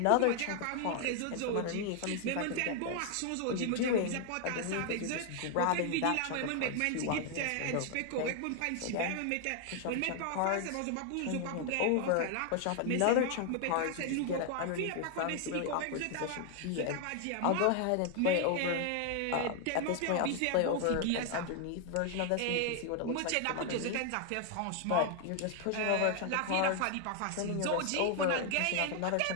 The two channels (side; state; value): both; different; correlation 0.00